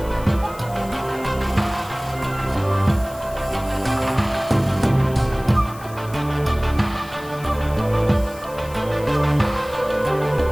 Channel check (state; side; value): noise; left; hiss, 20 dB below the sound